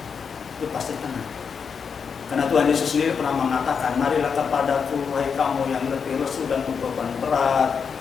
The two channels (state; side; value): quieter; right; 6.2 dB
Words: itu pasti tenang. Karena Tuhan Yesus sendiri pernah mengatakan, marilah kepadaku wahai kamu yang letih lesu dan beban berat,